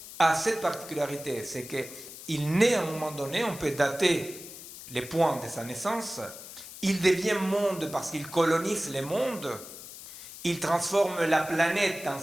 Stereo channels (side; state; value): left; noise; hiss, 14 dB below the sound